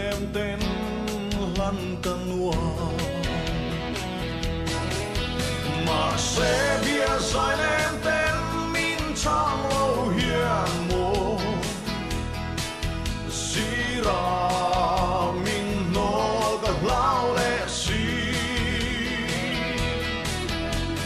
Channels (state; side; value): identical; both; correlation 1.00